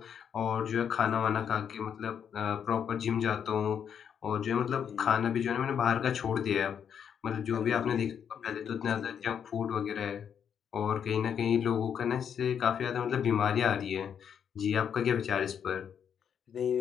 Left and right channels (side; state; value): right; quieter; 8.0 dB